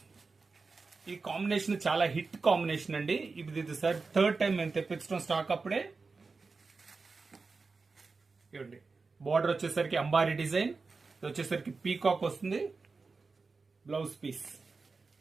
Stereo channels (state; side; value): quieter; left; 4.3 dB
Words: ఈ కాంబినేషన్ చాలా హిట్ కాంబినేషన్ అండి. ఇది సార్ థర్డ్ టైం మేము తెప్పించడం స్టాక్. అప్పుడే చూడండి, బార్డర్ వచ్చేసరికి అంబారీ డిజైన్, ఇది వచ్చేసరికి పీకాక్ వస్తుంది. బ్లౌజ్ పీస్